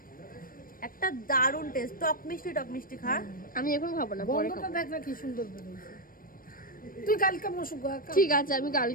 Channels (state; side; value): late; right; 0.41 ms